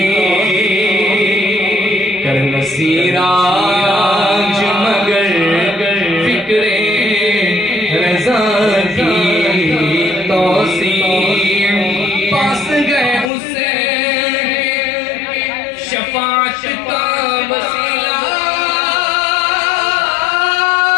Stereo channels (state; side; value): drops out; right; at 13.3 s